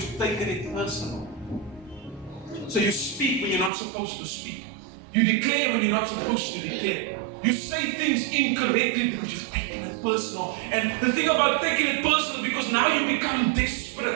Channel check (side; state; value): left; drops out; at 3.7 s